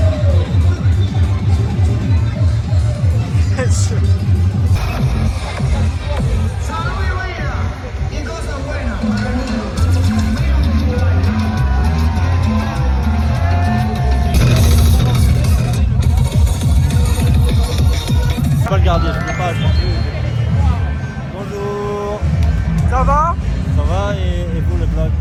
Je peux pas le garder, je peux pas. Bonjour. Ça va? Ça va et vous le vlog,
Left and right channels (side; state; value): both; identical; correlation 1.00